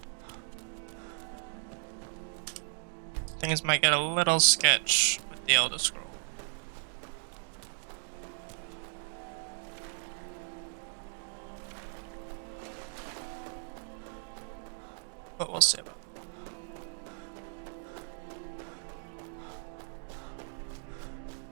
Things might get a little sketch with the Elder Scroll. But we'll see about it.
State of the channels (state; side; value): silent; left; digital silence